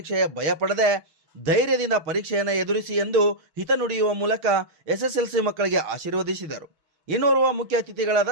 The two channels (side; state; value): left; late; 6.3 ms